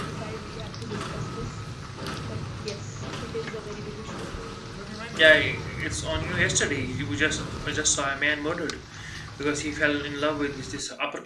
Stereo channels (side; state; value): both; identical; correlation 1.00